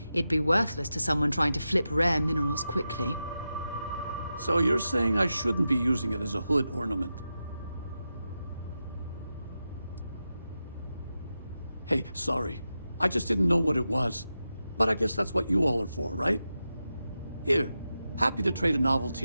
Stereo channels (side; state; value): both; inverted; correlation -0.90